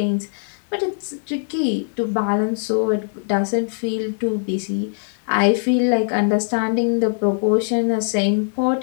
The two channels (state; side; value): silent; right; digital silence